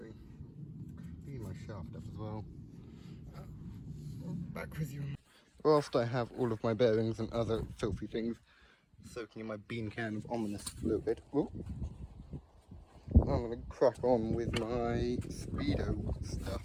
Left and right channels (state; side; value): identical; both; correlation 1.00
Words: Clean my shaft up as well. Back with you. Whilst I have all of my bearings and other filthy things soaking in my bean can of ominous fluid, I'm going to crack on with my speedo